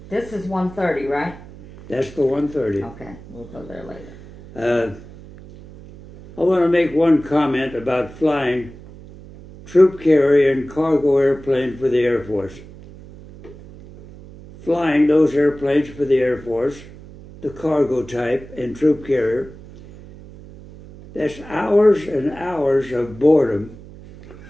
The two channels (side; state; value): right; noise; hum, 18 dB below the sound